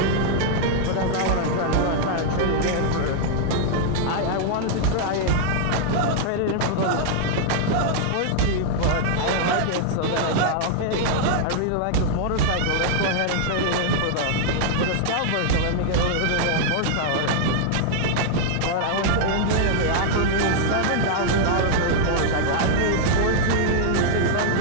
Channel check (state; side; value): different; both; correlation -0.01